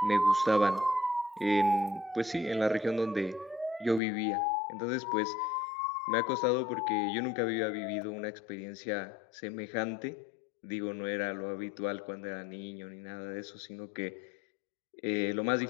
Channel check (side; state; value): right; drops out; at 4.0 s